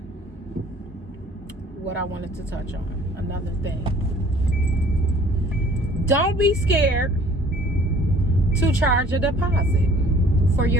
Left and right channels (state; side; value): normal; both; correlation 0.53